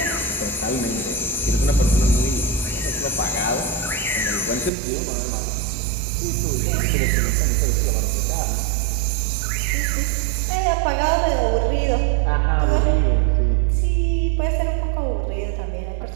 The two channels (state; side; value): drops out; left; at 4.7 s